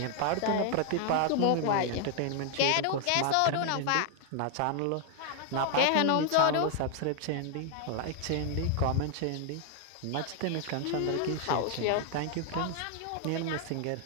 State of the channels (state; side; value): different; both; correlation 0.00